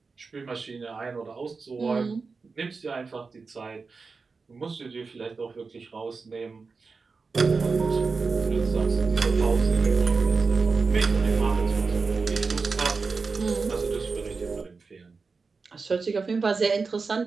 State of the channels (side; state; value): left; quieter; 4.5 dB